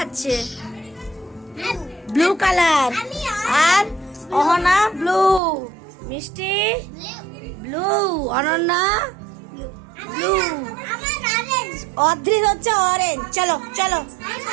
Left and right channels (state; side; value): drops out; left; at 5.4 s